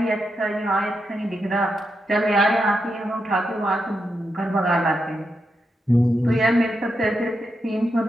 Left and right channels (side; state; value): both; normal; correlation 0.85